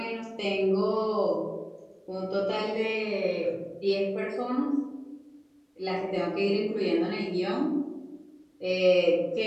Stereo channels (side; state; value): both; identical; correlation 1.00